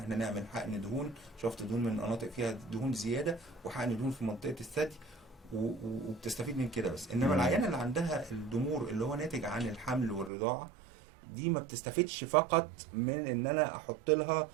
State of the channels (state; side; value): drops out; left; at 10.3 s